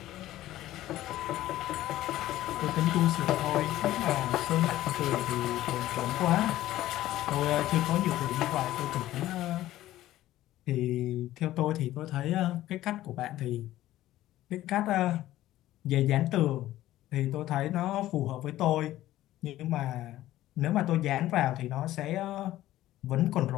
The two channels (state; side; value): quieter; right; 14.7 dB